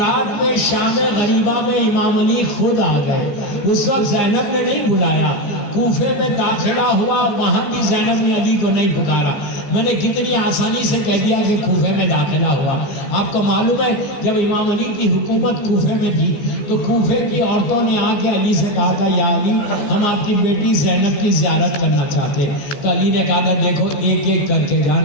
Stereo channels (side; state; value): right; late; 15 ms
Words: میں شام غریبہ میں امام علی خود آ گئے، اس وقت زینب نے نہیں بلایا۔ کوفے میں داخلہ ہوا، وہاں بھی زینب نے علی کو نہیں پکارا۔ میں نے کتنی آسانی سے کہہ دیا کہ کوفے میں داخلہ ہوا۔ آپ کو معلوم ہے جب امام علی کی حکومت کوفے میں تھی تو کوفے کی عورتوں نے آ کے علی سے کہا تھا یا علی ہم آپ کی بیٹی زینب کی زیارت کرنا چاہتے۔ تو علی نے کہا تھا دیکھو ایک ایک کر کے